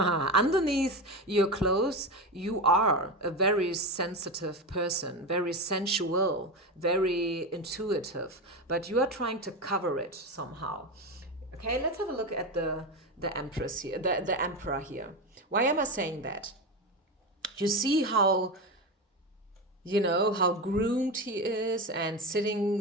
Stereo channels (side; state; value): both; normal; correlation 0.19